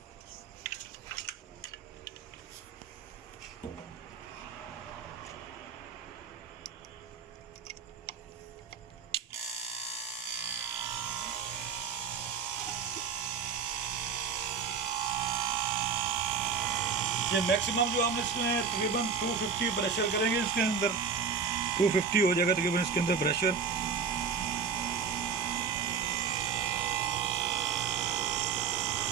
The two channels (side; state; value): left; quieter; 5.9 dB